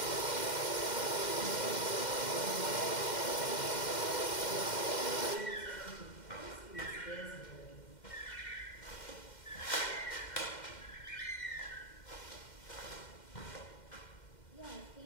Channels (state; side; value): late; right; 2.1 ms